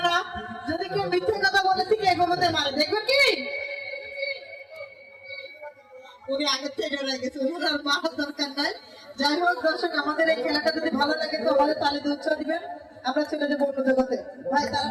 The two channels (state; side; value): identical; both; correlation 1.00